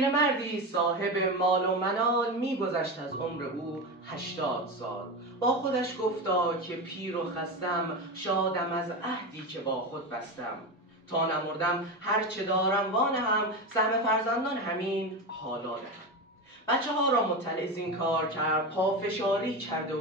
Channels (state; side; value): normal; both; correlation 0.20